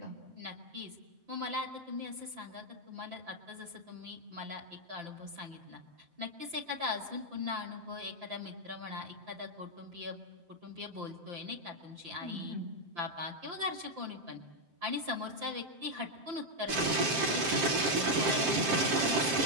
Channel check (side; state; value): left; late; 7.6 ms